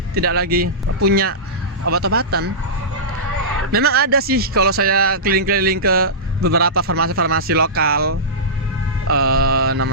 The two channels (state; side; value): normal; both; correlation -0.17